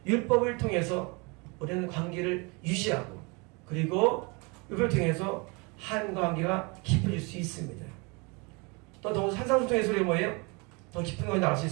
율법을 통해서 우리는 관계를 유지하고 그리고 율법을 통해서 하나님과 관계가 깊어질 수 있습니다. 또 더욱 산상수훈의 소리가 뭐예요? 더 깊은 것이 나올 수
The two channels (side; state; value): left; quieter; 29.5 dB